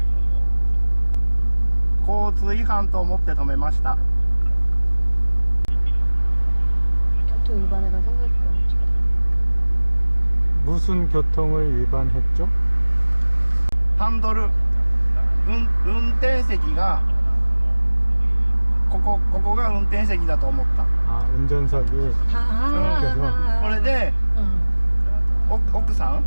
交通違反と思って止めました。 교통 위반해가 생각이 안 나. 무슨 교통을 위반했죠? ハンドル、運転席がここが運転席だと思った。 아, 운전석이. これで 奥さん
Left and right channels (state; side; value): inverted; both; correlation -1.00